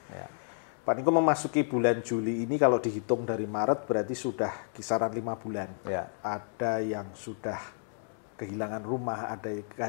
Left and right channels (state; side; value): silent; right; 57 dB below the other